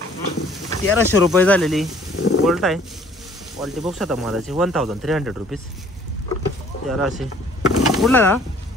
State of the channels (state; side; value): normal; both; correlation 0.57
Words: रुपये झालेली गोल्ट आहे. क्वालिटी बॉक्स आता मालाची 1300 रुपीज. 1300. कुठला दा?